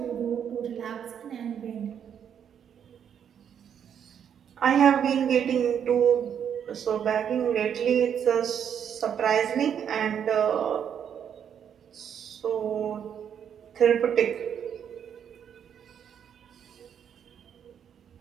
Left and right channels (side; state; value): left; quieter; 8.4 dB